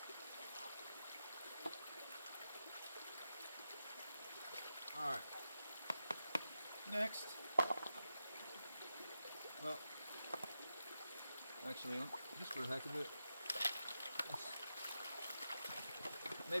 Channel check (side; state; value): both; inverted; correlation -0.89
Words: All right. Next. Well, actually, just for the heck of it,